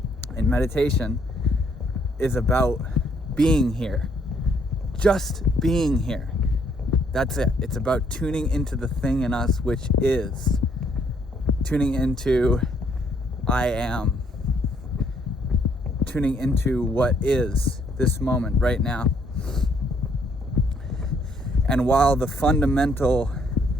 And meditation is about being here, just being here. That's it. It's about tuning into the thing in us which is. Tuning into I am. Tuning into what is this moment right now. And while the fundamental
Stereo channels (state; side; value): normal; both; correlation 0.68